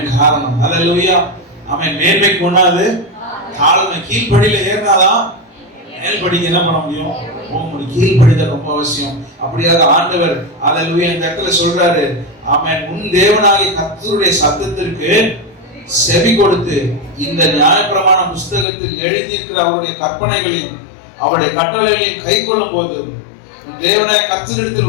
காரணம். ஹல்லேலூயா. ஆமென். மேன்மைக்கு கொண்டாது காலம் கீழ்ப்படியில ஏறினாதான் மேல்படிக்கு என்ன பண்ண முடியும்? போக முடியும். கீழ்ப்படிதல் ரொம்ப அவசியம். அப்படியாக ஆண்டவர் ஹல்லேலூயா இந்த இடத்துல சொல்றாரு. ஆமென். உன் தேவனாகிய கர்த்தருடைய சத்தத்திற்கு செவி கொடுத்து இந்த நியாயப்பிரமாண புஸ்தகத்தில் எழுதியிருக்கிற அவருடைய கற்பனைகளையும் அவருடைய கட்டளைகளையும் கை கொள்ளும் போது தேவனாய கர்த்தரிடத்தில்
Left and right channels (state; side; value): drops out; right; at 18.7 s